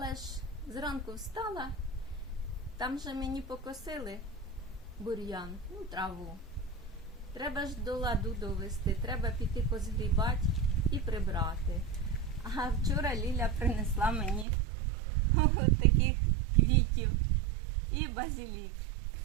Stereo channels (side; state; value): left; drops out; at 14.5 s